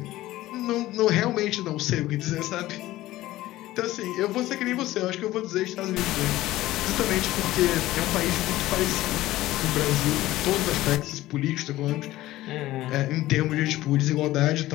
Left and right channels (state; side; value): quieter; right; 16.2 dB